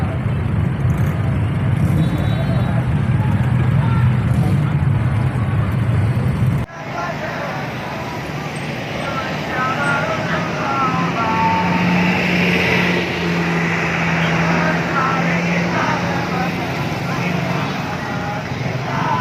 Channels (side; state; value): both; identical; correlation 1.00